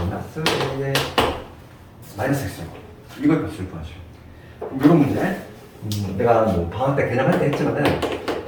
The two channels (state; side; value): identical; both; correlation 1.00